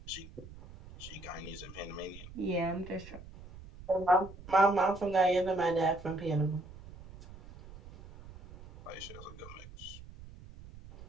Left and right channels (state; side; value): noise; right; rumble, 17 dB below the sound